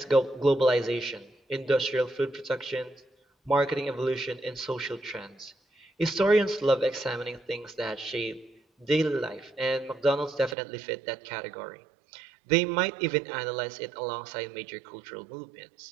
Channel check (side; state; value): left; drops out; at 10.6 s